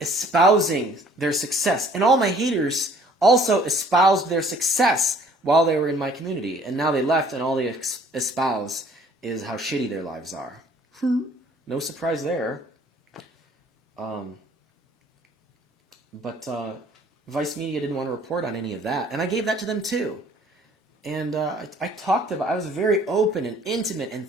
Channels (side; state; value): both; normal; correlation 0.56